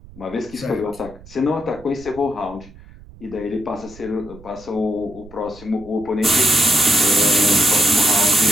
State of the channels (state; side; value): noise; right; rumble, 21 dB below the sound